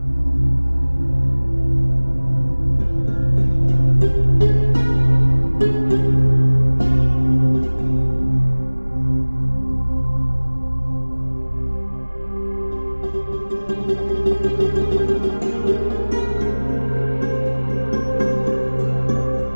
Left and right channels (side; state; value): both; inverted; correlation -1.00